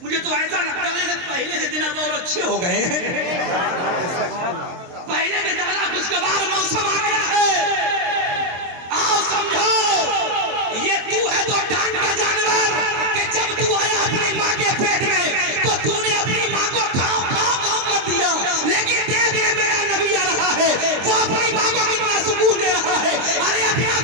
मुझे तो ऐसा लगता था कि पहले से दिन अब और अच्छे हो गए हैं, पहले से ज्यादा खुशगवार मौसम आ गया है। आओ समझो, ये तू है तो डांट का जानवर कि जब तू आया अपनी माँ के पेट में तो तूने अपनी माँ को खाओ खाओ खाओ कर दिया, लेकिन देख ले मेरा नबी आ रहा है, वो अपनी माँ को कितना सुकून दे रहा है। अरे अपना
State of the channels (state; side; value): late; left; 23 ms